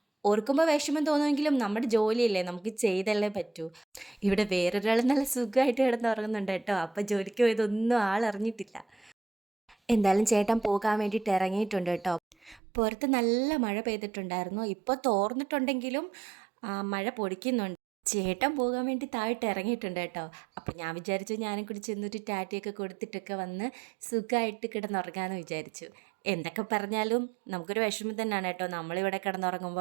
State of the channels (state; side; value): drops out; left; at 12.6 s